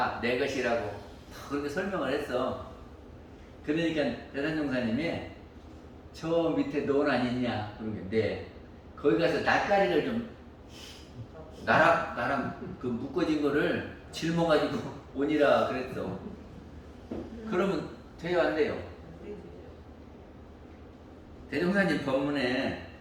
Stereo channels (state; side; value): identical; both; correlation 1.00